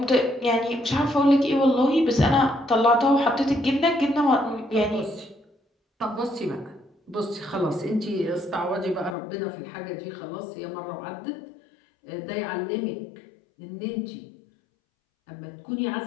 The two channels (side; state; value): right; drops out; at 9.2 s